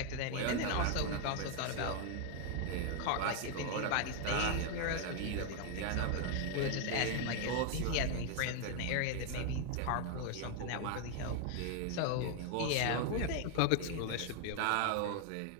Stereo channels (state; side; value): different; both; correlation 0.00